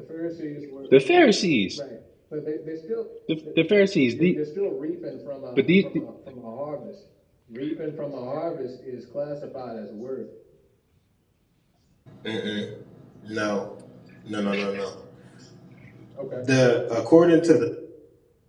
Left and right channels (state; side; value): identical; both; correlation 1.00